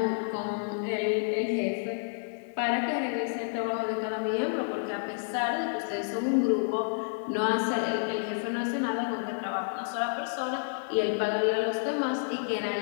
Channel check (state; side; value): silent; right; 58 dB below the other